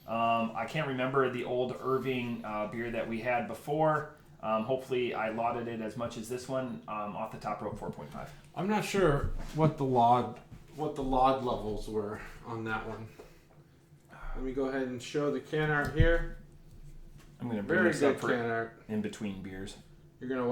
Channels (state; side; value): identical; both; correlation 1.00